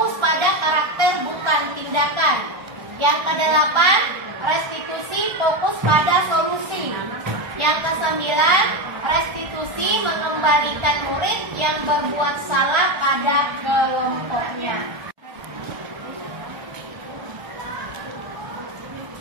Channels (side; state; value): left; late; 1.3 ms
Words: pada karakter bukan tindakan. Yang kedelapan, restitusi fokus pada solusi. Yang kesembilan, restitusi mengembalikan murid yang berbuat salah pada kelompoknya.